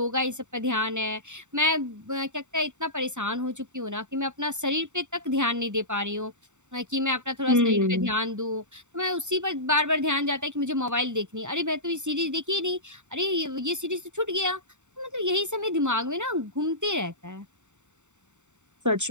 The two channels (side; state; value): left; late; 0.84 ms